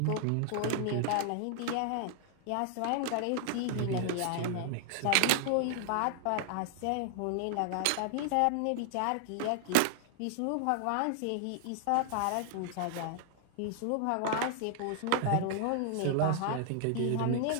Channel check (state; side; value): different; both; correlation -0.01